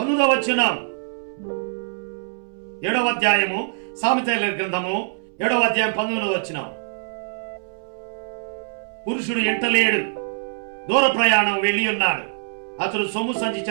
వచనం, 7వ అధ్యాయము సామెతల గ్రంథము 7వ అధ్యాయం 19వ వచనం. పురుషుడు ఎంటలేడు, దూర ప్రయాణం వెళ్ళి ఉన్నాడు, అతడు సొమ్ము సంచి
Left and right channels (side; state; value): left; silent; 63 dB below the other